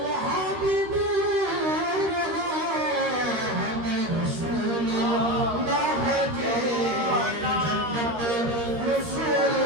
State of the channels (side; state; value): left; late; 13 ms